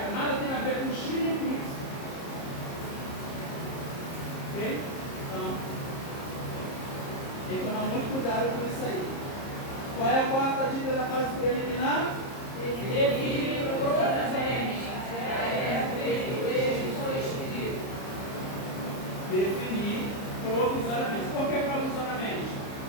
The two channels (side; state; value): right; late; 30 ms